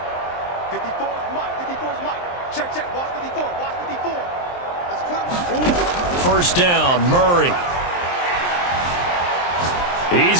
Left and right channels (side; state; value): right; late; 23 ms